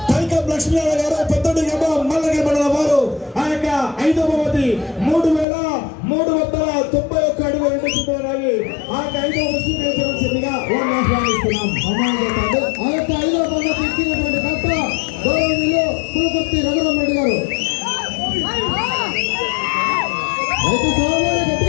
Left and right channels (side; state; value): right; drops out; at 5.5 s